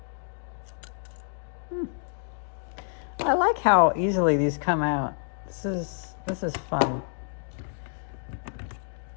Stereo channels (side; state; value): right; silent; 58 dB below the other